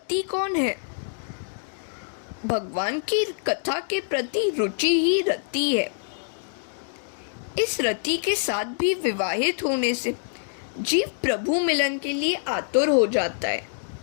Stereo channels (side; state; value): right; silent; digital silence